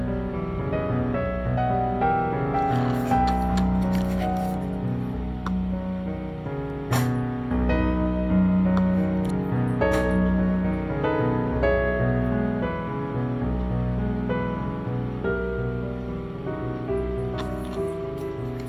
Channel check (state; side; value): identical; both; correlation 1.00